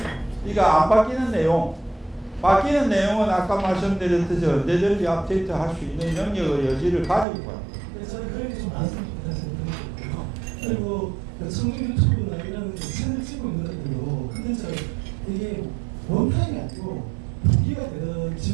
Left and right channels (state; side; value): drops out; left; at 7.2 s